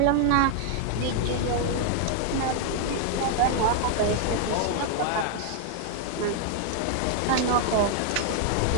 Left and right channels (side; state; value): both; different; correlation 0.00